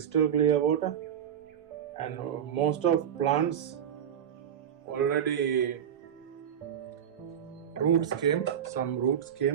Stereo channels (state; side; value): quieter; left; 8.9 dB